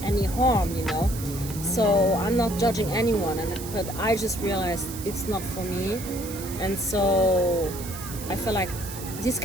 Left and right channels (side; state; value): right; noise; hiss, 11 dB below the sound